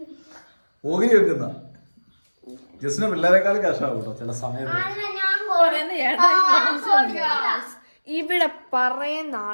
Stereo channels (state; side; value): inverted; both; correlation -1.00